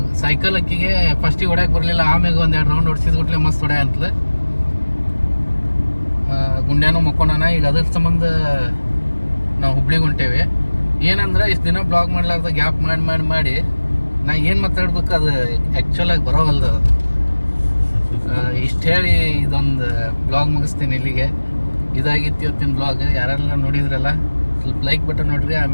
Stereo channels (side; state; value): both; inverted; correlation -1.00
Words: ಸೈಕಲ್ ಅಕ್ಕಿಗೆ ಫಸ್ಟಿಗೆ ಹೊಡ್ಯಕ್ಕೆ ಬರಲಿಲ್ಲ. ಆಮ್ಯಾಗ ಒಂದೆರಡು ರೌಂಡ್ ಹೊಡ್ಸಿದ್ಬಿಟ್ಲೆ ಮಸ್ತ್ ಹೊಡ್ಯ ಅಂತಲ. ಗುಂಡ್ಯಾನು ಮಕ್ಕೊಂಡಾನ. ಈಗ ಅದ್ರ ಸಂಬಂಧ ನಾವು ಹುಬ್ಳಿಗೆ ಹೊಂಟೇವಿ. ಏನಂದ್ರೆ ಇಷ್ಟು ದಿನ ಬ್ಲಾಗ್ ಮಾಡ್ಲಾರ್ದ ಗ್ಯಾಪ್ ಮಾಡಿ ನಾ ಏನು ಮಾತಾಡ್ಬೇಕು ಅದು ಆ್ಯಕ್ಚುಲಾಗಿ ಬರೋವಲ್ದು. ಇಷ್ಟು ಹೇಳಿ ಇದೊಂದು ಬ್ಲಾಗ್ ಮುಗಿಸ್ತೀನಿ ಇಲ್ಲಿಗೆ. ಇದಾಗಿತ್ತು ಇವತ್ತಿನ ಬ್ಲಾಗ್. ಯಾರೆಲ್ಲ ನೋಡಿದ್ರಲ್ಲ ಸ್ವಲ್ಪ ಲೈಕ್ ಬಟನ್ ನೋಡ್ರಿ.